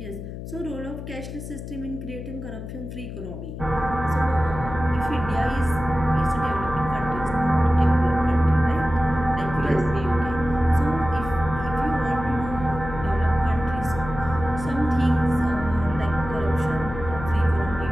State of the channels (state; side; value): noise; left; hum, 9 dB below the sound